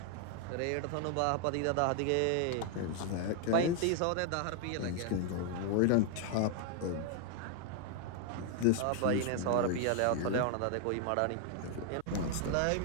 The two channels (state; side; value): different; both; correlation 0.00